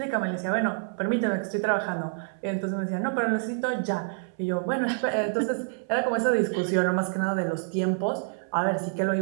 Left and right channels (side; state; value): left; silent; 60 dB below the other